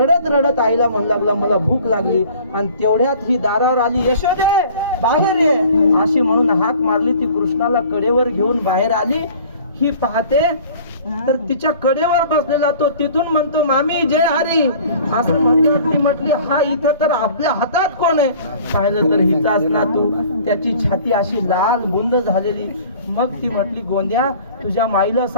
रडत आईला म्हणू लागला मला भूक लागली. आणि तेवढ्यात ही दारावर आली, यशोदे बाहेर ये अशी म्हणून हाक मारली. ती कृष्णाला कडेवर घेऊन बाहेर आली. ही पाहते तर तिच्या कडेवर बसलेला तो तिथून म्हणतो मामी जय हरी. असं म्हणल्यावर ती म्हटली हा इथं तर आपल्या हातात कोण आहे. पाहिलं तर हिचाच नातू, त्याची छाती अशी लाल गुंद झालेली. मग ती म्हटली गोंद्या तुझ्या माईला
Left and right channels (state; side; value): inverted; both; correlation -0.48